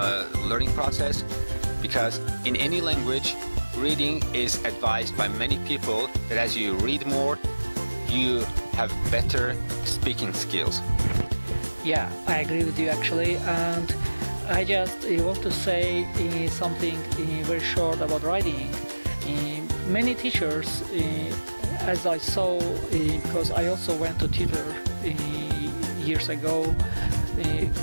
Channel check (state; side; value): inverted; both; correlation -1.00